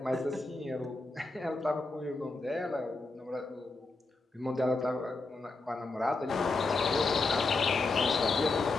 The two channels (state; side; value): quieter; right; 3.5 dB